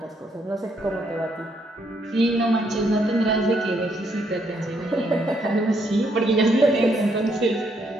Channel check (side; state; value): both; normal; correlation 0.73